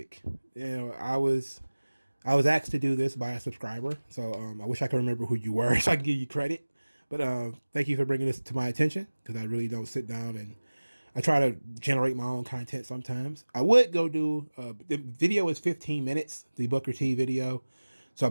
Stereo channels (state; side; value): inverted; both; correlation -1.00